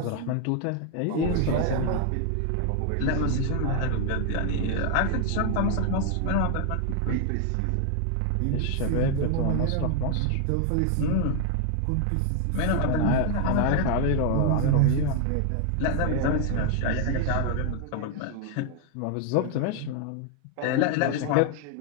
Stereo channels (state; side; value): different; both; correlation 0.00